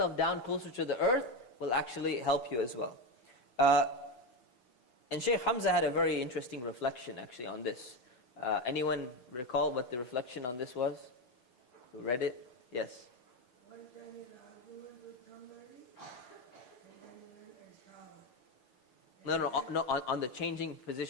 down closer to the earth will actually help you as well. And Shaykh Hamza had a very interesting reflection actually on this. Anyone recall what the reflection on this was? Who read it? Yes. One time in an argument with somebody, and then he went and showered. No, on the changing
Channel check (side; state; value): right; late; 8.0 ms